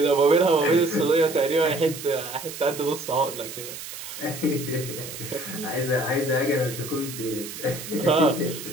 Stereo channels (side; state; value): right; noise; hiss, 10 dB below the sound